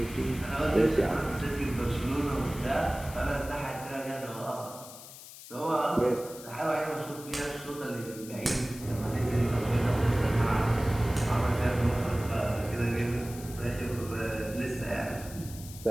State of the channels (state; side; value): noise; left; hiss, 15 dB below the sound